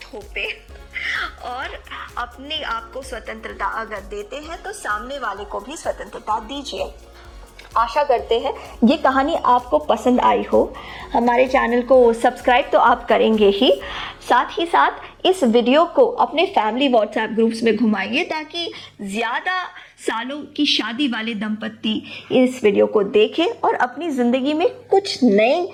थोपें और अपने आप को स्वतंत्रता अगर देते हैं तो सामने वाले को भी स्वतंत्रता दीजिए। आशा करते हैं ये कहानी आपको पसंद आई हो। हमारे चैनल को सब्सक्राइब तो आप करेंगे ही, साथ ही साथ इस वीडियो को अपने फैमिली व्हाट्सएप ग्रुप्स में घुमाइए ताकि ज़्यादा सालों की शादी वाले दंपत्ति इस वीडियो को देखें और अपनी ज़िंदगी में कुछ नए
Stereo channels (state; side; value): identical; both; correlation 1.00